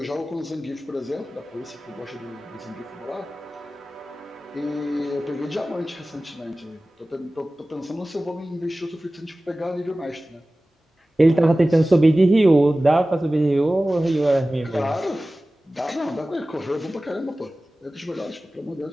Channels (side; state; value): both; normal; correlation 0.97